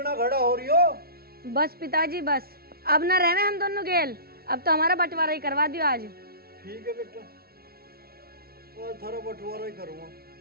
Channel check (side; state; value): left; late; 0.44 ms